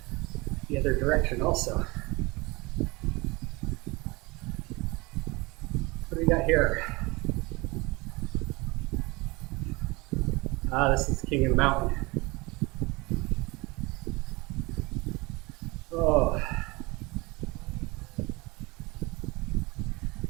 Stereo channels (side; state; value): left; quieter; 24.5 dB